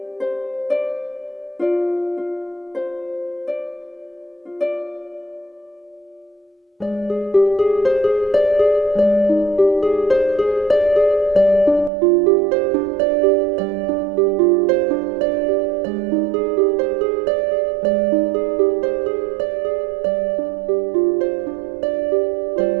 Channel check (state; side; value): drops out; left; at 11.9 s